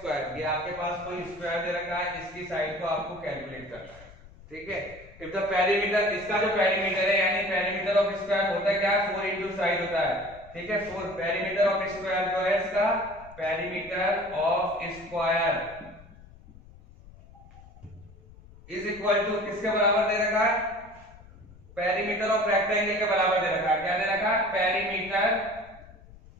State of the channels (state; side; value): noise; left; rumble, 21 dB below the sound